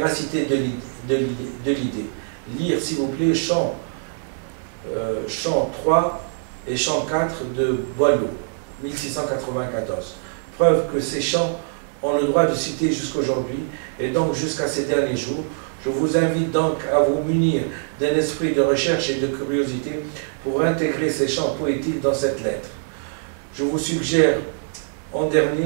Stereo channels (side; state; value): left; silent; 58 dB below the other